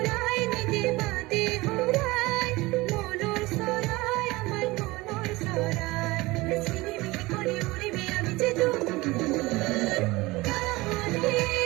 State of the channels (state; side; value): quieter; left; 21.2 dB